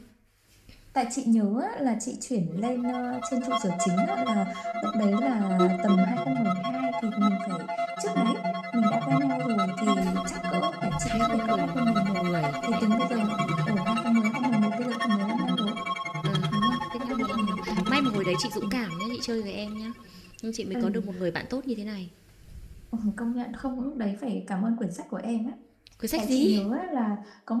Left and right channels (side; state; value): both; identical; correlation 1.00